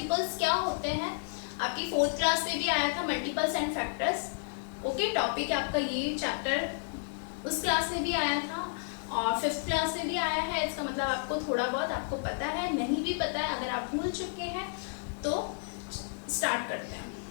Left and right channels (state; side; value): silent; right; 57 dB below the other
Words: क्या होते हैं? आपकी 4th क्लास में भी आया था multiples and factors. Okay, topic आपका ये चैप्टर उस क्लास में भी आया था और 5th क्लास में भी आया है. इसका मतलब आपको थोड़ा बहुत आपको पता है, नहीं भी पता है, अगर आप भूल चुके हैं तो स्टार्ट करते हैं.